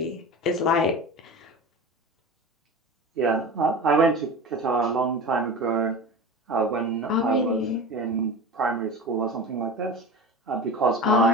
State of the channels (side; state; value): both; normal; correlation 0.31